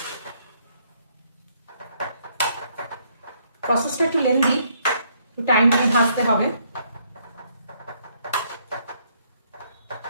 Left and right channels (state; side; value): inverted; both; correlation -0.69